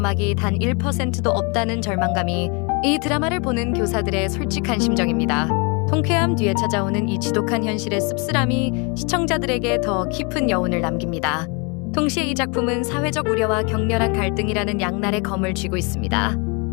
단 1%도 없다는 절망감이 이 드라마를 보는 교사들의 솔직한 심정입니다. 통쾌함 뒤에 찾아오는 이 지독한 현실의 씁쓸함이 시청자들에게 더 깊은 여운을 남깁니다. 동시에 이 작품은 사회적 우려와 격렬한 갈등이라는 양날의 검을 쥐고 있습니다.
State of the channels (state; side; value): quieter; right; 32.5 dB